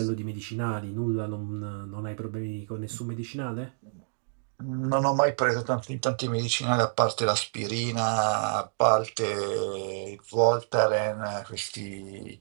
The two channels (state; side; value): silent; left; digital silence